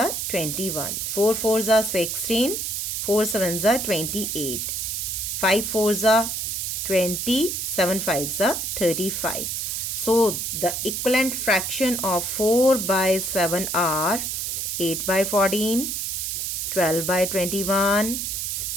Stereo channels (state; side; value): noise; right; hiss, 2 dB below the sound